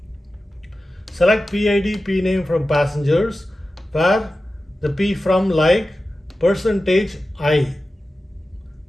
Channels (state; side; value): normal; both; correlation 0.94